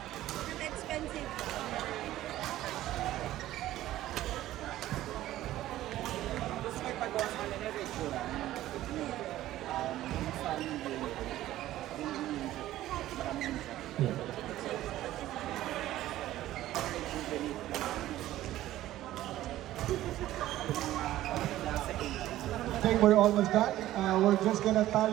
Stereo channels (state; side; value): quieter; left; 14.5 dB